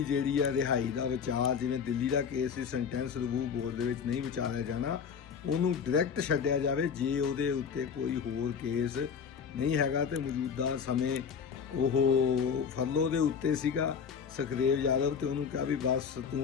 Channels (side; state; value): right; quieter; 6.7 dB